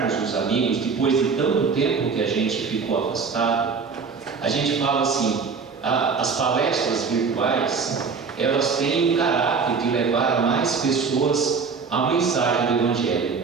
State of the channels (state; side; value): quieter; left; 5.3 dB